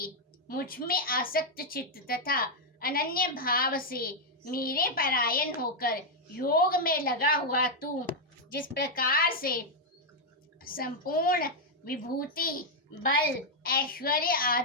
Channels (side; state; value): both; normal; correlation -0.01